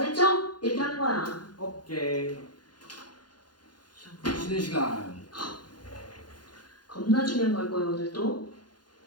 이렇게 하는 거야. 오케이. 쉬는 시간. 겁나 중요한 걸 거예요, 오늘도.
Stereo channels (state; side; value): late; right; 0.70 ms